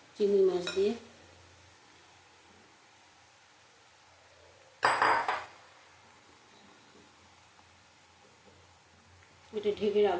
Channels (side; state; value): both; identical; correlation 1.00